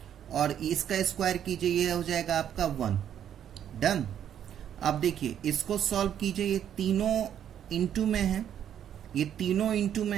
और इसका स्क्वायर कीजिए ये हो जाएगा आपका 1। डन। अब देखिए इसको सॉल्व कीजिए, ये तीनों इंटू में है, ये तीनों इंटू में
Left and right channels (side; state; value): left; quieter; 9.7 dB